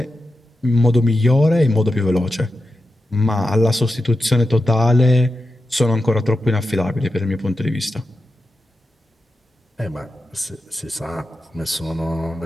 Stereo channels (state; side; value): normal; both; correlation 0.90